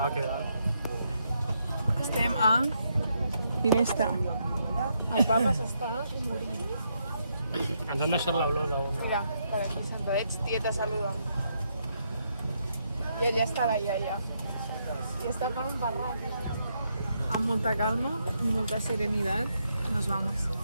què tal? Estem a Ginesta. El papa s'està morint. Ens han deixat l'olor d'un... Mira, per aquí sentadets, tieta, saluda. I allà està la iaia. I està per un barranc. Amb molta calma, molta serenitat, nos vamos.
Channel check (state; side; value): inverted; both; correlation -0.78